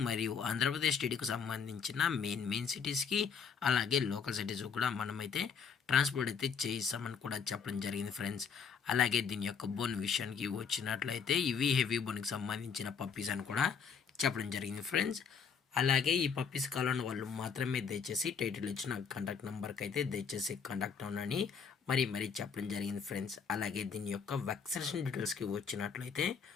మరియు ఆంధ్రప్రదేశ్ స్టేట్కి సంబంధించిన మెయిన్ సిటీస్కి అలాగే లోకల్ సిటీస్ కూడా మనమైతే ట్రాన్స్పోర్ట్ అయితే చేయిస్తామని కూడా చెప్పడం జరిగింది ఫ్రెండ్స్. అలాగే దీని యొక్క బోన్ విషయానికి వచ్చినట్లయితే ఇవి హెవీ బోన్కి సంబంధించిన పప్పీస్ అని కూడా చెప్పడం జరిగింది ఫ్రెండ్స్. అలాగే ఈ పప్పీస్ కావాలని వాళ్ళు మాత్రమే దయచేసి టైటిల్ ఇచ్చిన కాంటాక్ట్ నెంబర్కి అయితే దయచేసి కాంటాక్ట్ అవ్వనని మరీ చెప్పడం జరిగింది ఫ్రెండ్స్. అలాగే దీని యొక్క వ్యాక్సినేషన్ డీటెయిల్స్కి వచ్చినట్లయితే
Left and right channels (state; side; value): quieter; right; 6.4 dB